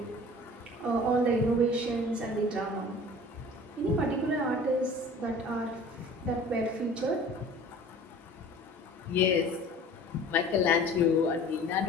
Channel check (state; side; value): normal; both; correlation 0.45